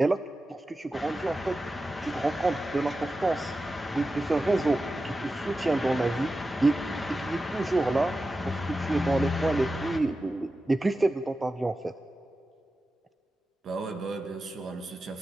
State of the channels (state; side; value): normal; both; correlation 0.93